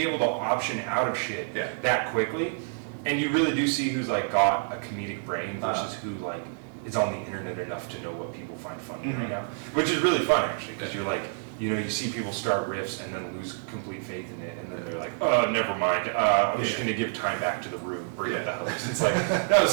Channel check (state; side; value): silent; left; 59 dB below the other